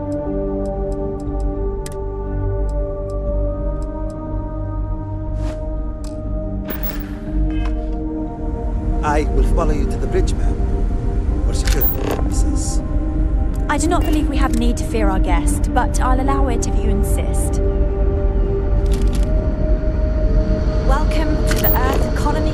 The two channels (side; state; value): both; identical; correlation 1.00